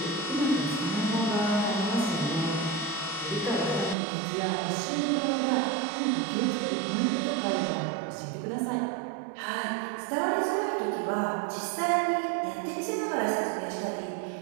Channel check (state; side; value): drops out; left; at 4.0 s